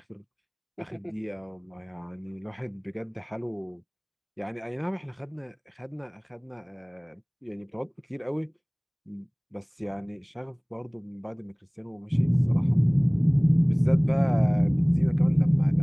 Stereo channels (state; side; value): identical; both; correlation 1.00